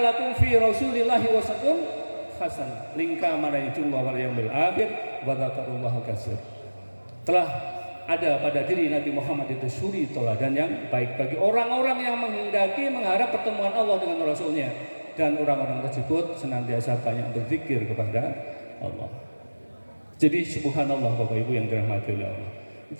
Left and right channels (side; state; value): both; inverted; correlation -1.00